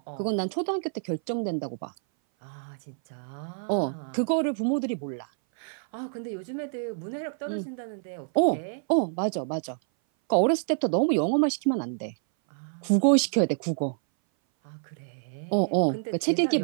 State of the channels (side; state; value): left; silent; 58 dB below the other